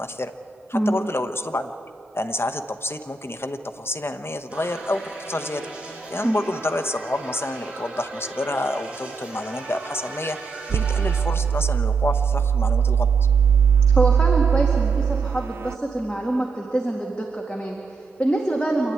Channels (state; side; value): quieter; left; 3.9 dB